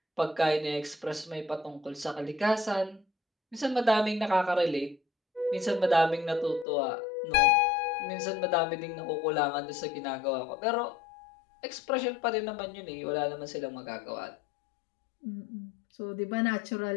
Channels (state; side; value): drops out; right; at 6.7 s